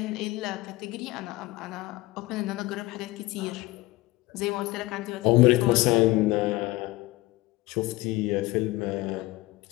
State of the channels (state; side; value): quieter; right; 20.1 dB